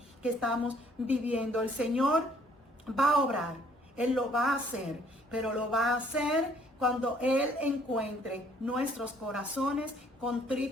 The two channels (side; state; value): both; normal; correlation 0.62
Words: que estamos viviendo. El Señor va a obrar, Él lo va a hacer, pero lo va a hacer cuando Él encuentre nuestros corazones